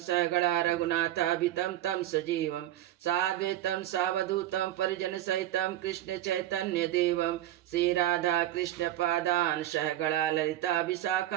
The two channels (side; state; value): left; quieter; 13.6 dB